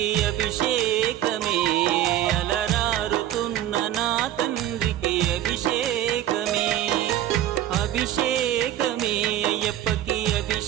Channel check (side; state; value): left; quieter; 12.3 dB